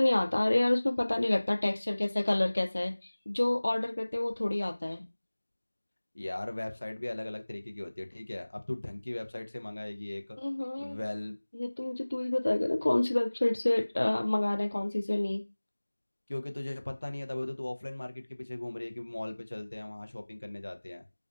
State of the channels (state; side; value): inverted; both; correlation -1.00